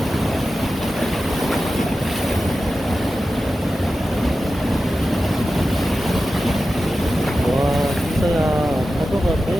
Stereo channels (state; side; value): normal; both; correlation 0.93